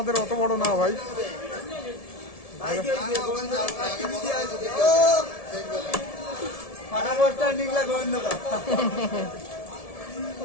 অত বড় না ভাই।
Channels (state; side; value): late; right; 1.7 ms